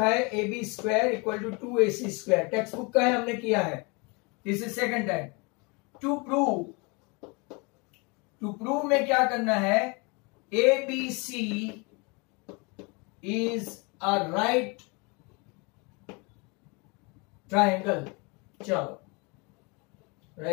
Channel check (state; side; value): quieter; right; 29.7 dB